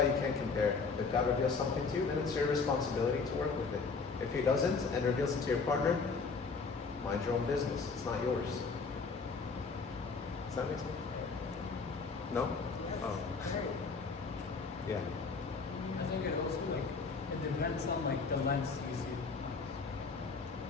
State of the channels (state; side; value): quieter; right; 4.7 dB